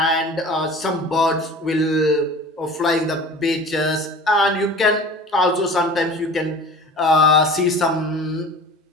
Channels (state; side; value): normal; both; correlation 0.40